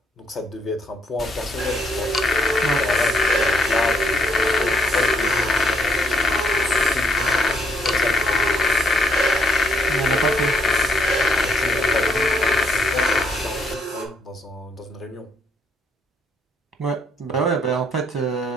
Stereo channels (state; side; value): normal; both; correlation 0.70